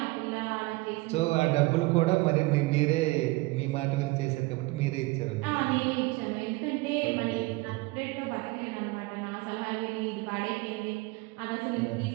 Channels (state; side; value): quieter; left; 22.8 dB